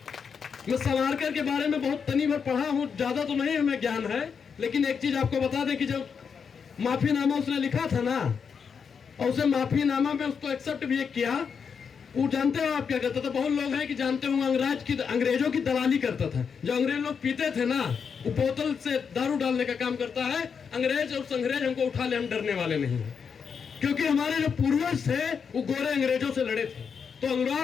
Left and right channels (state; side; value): quieter; right; 6.4 dB